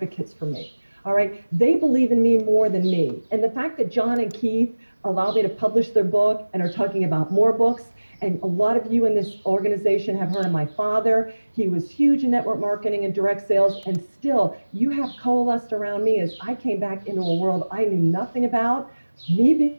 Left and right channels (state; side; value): inverted; both; correlation -1.00